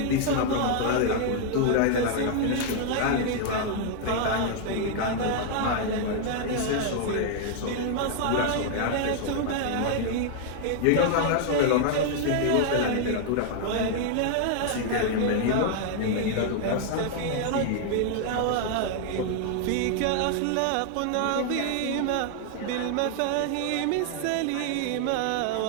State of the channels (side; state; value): both; different; correlation 0.00